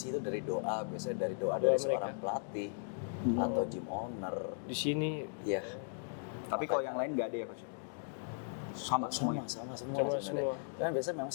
itu dari doa, biasanya dari doa dari mereka. seorang pelatih atau gym owner. Di sini Ya, Tapi kalau yang lain nggak ada ya Coach? Sama semuanya. sama semua Sama sebenarnya. semua. Kan biasanya memang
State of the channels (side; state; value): right; silent; digital silence